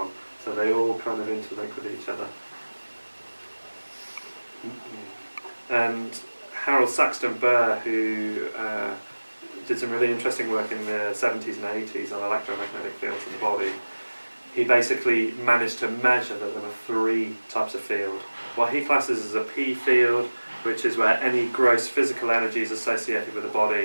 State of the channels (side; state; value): both; inverted; correlation -1.00